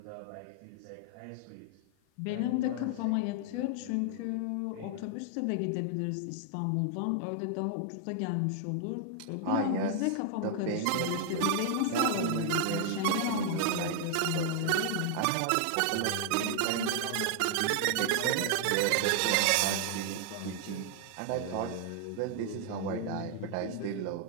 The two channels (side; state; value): both; different; correlation 0.00